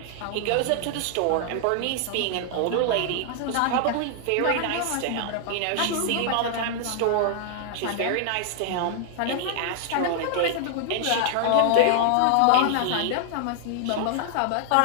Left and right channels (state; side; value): different; both; correlation 0.00